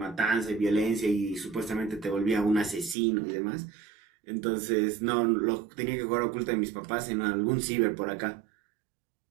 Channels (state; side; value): drops out; left; at 3.0 s